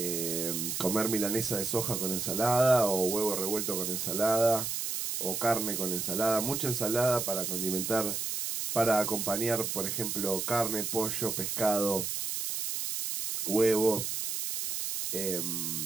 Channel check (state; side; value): noise; right; hiss, 2 dB below the sound